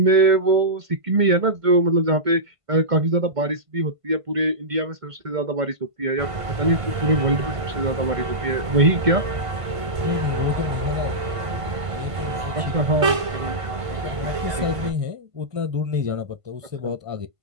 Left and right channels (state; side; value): late; left; 1.5 ms